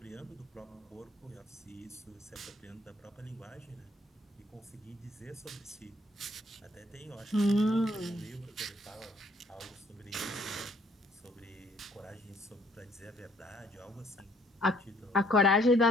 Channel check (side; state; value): both; normal; correlation 0.64